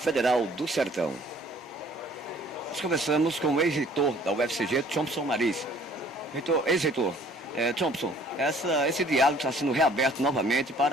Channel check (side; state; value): both; normal; correlation 0.56